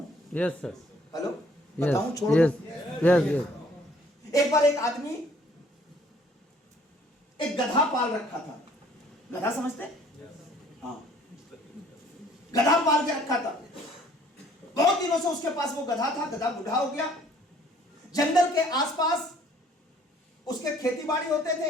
यस सर, हेलो, बताऊं? छोड़ यस, दो। यस, यस, एक बार एक आदमी एक गधा पाल रखा था। गधा समझते? हाँ, गधा पाल के रखा था। बहुत दिनों से उसके पास वो गधा था। गधा बूढ़ा हो गया। जंगल के आसपास उसके खेती बाड़ी होते थे।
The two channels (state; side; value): normal; both; correlation 0.59